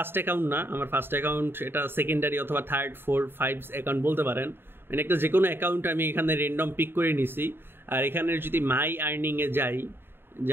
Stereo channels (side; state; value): left; late; 0.11 ms